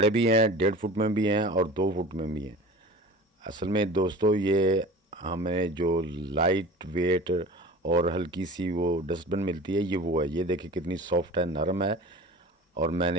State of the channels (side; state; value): both; normal; correlation 0.39